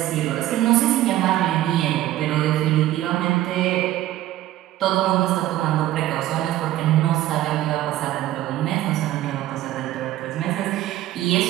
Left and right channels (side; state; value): left; quieter; 14.4 dB